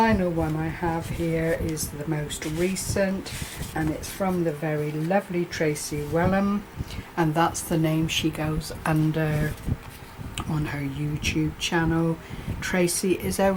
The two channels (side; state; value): both; identical; correlation 1.00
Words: one I have here is the most recent, and it's from the very lovely Tracy Welham, and that's the name she goes under on her YouTube channel. Tracy is a